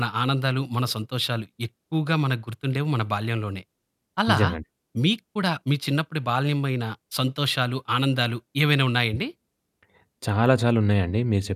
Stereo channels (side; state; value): both; identical; correlation 1.00